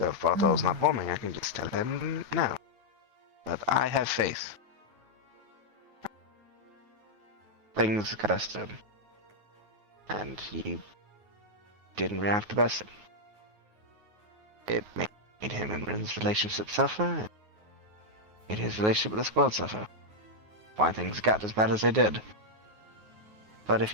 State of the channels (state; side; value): late; left; 9.4 ms